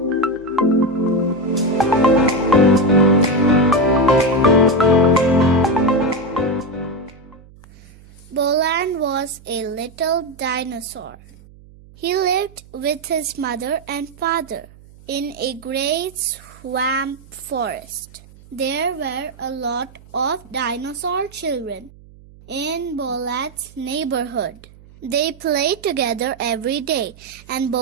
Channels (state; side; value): noise; right; hum, 23 dB below the sound